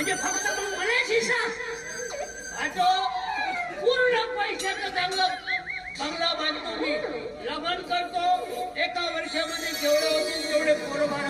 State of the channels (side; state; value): both; identical; correlation 1.00